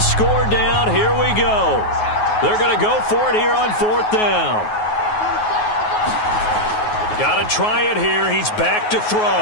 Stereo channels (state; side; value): late; right; 9.4 ms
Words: score down. Here we go. They're going to go for it here on 4th down. Got to try it here. He's back to throw.